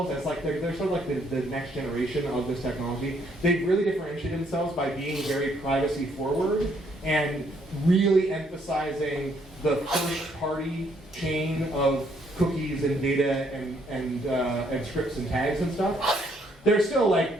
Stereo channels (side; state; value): both; normal; correlation 0.69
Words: as like they're sort of like the next generation of this technology. They've really differentiated themselves by being very privacy forward and really emphasizing the first party chain of cookies and data and scripts and tags and stuff. There's still